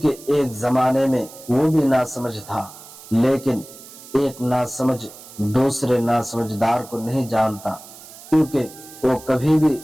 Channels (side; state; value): right; noise; hiss, 18 dB below the sound